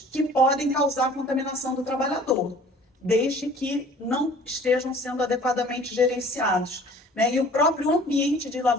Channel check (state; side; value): normal; both; correlation 0.50